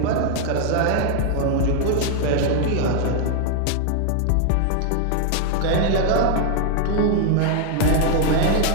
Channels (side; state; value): both; different; correlation 0.00